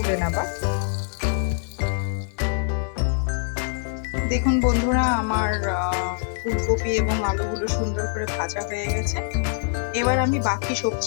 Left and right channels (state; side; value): silent; right; digital silence